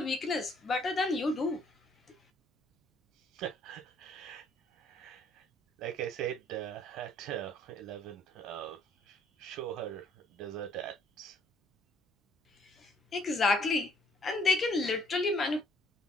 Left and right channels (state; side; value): normal; both; correlation 0.64